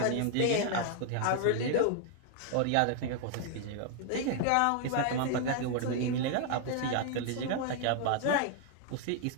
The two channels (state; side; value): different; both; correlation 0.00